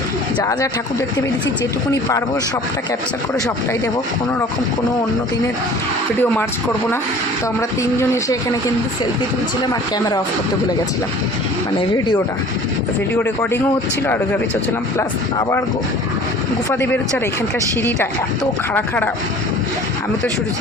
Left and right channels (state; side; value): normal; both; correlation 0.46